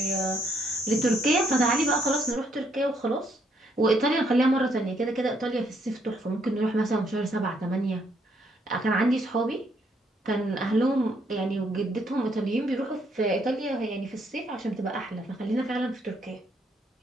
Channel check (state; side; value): normal; both; correlation 0.71